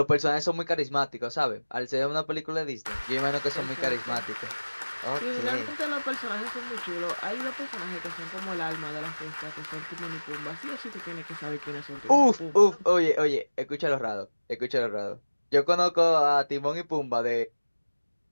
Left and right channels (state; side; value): inverted; both; correlation -1.00